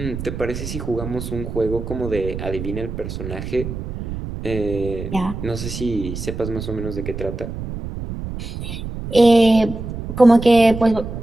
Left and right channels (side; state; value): right; noise; rumble, 7 dB below the sound